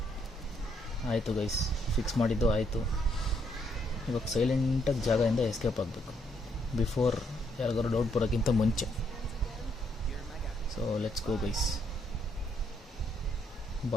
ಆಯಿತು ಗೈಸ್, ಫಿಕ್ಸ್ ಮಾಡಿದ್ದು ಆಯಿತು. ಇವಾಗ ಸೈಲೆಂಟಾಗಿ ಜಾಗದಿಂದ ಎಸ್ಕೇಪ್ ಆಗಬೇಕು ಬಿಫೋರ್ ಯಾರಿಗಾರು ಡೌಟ್ ಬರೋಕ್ಕಿಂತ ಮುಂಚೆ. So let's go guys.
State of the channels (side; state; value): both; normal; correlation 0.73